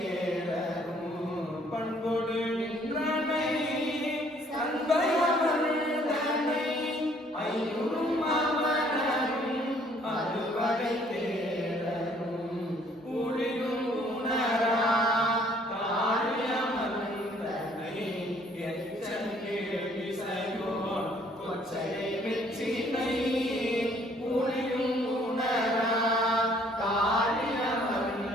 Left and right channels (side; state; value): both; normal; correlation 0.61